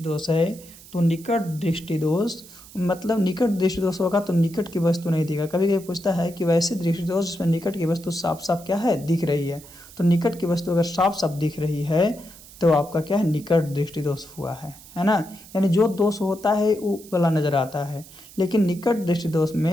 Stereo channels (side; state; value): right; noise; hiss, 20 dB below the sound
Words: दोष है, तो निकट दृष्टि दोष मतलब निकट दृष्टि दोष होगा तो निकट की वस्तु नहीं दिखेगा। कभी कभी पूछता है कि वैसे दृष्टि दोष जिसमें निकट की वस्तु साफ साफ क्या है? दिख रही है। तो निकट की वस्तु अगर साफ साफ दिख रही है तो आपका क्या है? निकट दृष्टि दोष हुआ है ना। यानी जो दोष होता है वो वाला नजर आता है, लेकिन निकट दृष्टि दोष